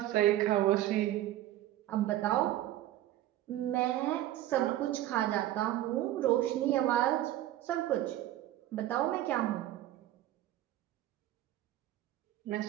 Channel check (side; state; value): left; quieter; 14.0 dB